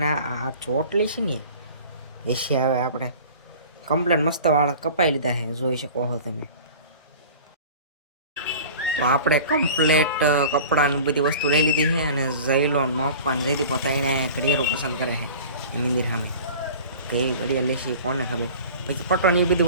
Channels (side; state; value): both; inverted; correlation -0.41